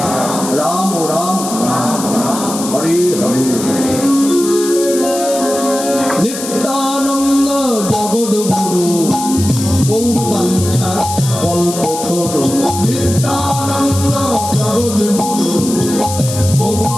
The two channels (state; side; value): noise; left; hiss, 8 dB below the sound